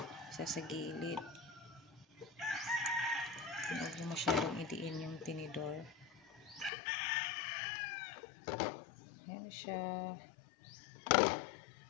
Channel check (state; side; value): drops out; right; at 6.7 s